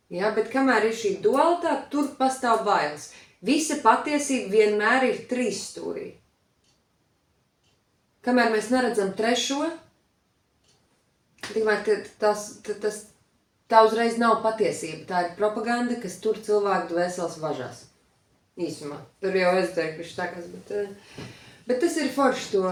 Ja, bet kamēr ir šī dualitāte, tur pastāv bailes. Visa patiesība vienmēr ir trīsstūrī. Kamēr mēs neredzam trešo, tikmēr tā uzreiz nav patiesība, tā ir propaganda, kas tur cilvēku dvēseles važās. Īsumā. Tur jau ezoteriski štākās, bet tas ir forši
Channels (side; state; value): both; identical; correlation 1.00